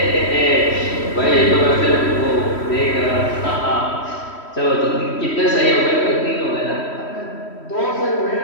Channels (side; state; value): right; late; 3.1 ms